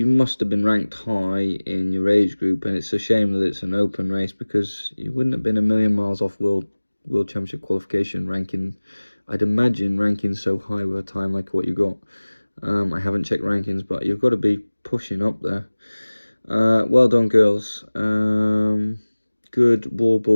must have been ranked high in your age group, and it's a shame that it's an open race because you wouldn't have been a million miles off World Championship qualification ranking. I'd imagine ranking so high with a time like what you got. I haven't checked rankings, but you've got to be pushing up there. Well done, girls. Good wall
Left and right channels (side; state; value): both; inverted; correlation -1.00